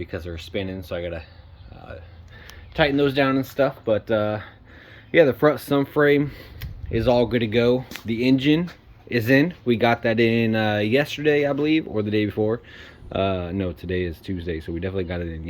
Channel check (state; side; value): identical; both; correlation 1.00